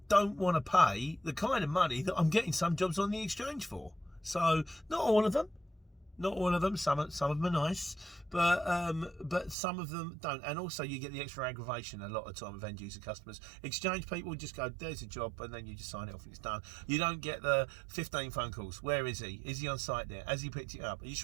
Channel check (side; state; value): left; drops out; at 9.6 s